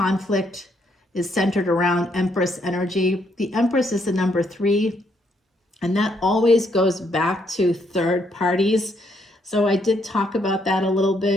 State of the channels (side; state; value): both; normal; correlation 0.73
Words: is centered around Empress energy. The Empress is the number 3, and that always goes back to third parties. So I did talk about that a little